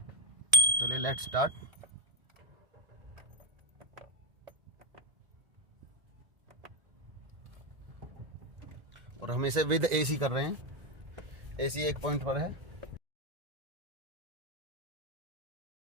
चलिए लेट्स स्टार्ट। और हम इसे विद एसी कर रहे हैं, एसी 1 पॉइंट पर है।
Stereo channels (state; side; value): late; left; 1.7 ms